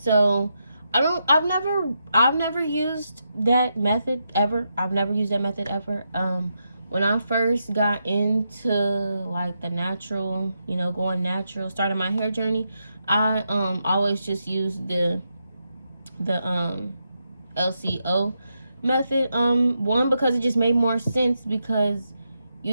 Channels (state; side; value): inverted; both; correlation -0.84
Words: I've never used that method ever. I've never used that method ever. When I first got into like the natural, going natural, starting my hair journey, I always just used the LCO method. One, because it just made more sense, because